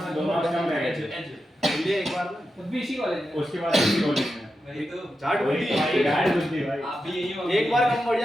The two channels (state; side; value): normal; both; correlation 0.89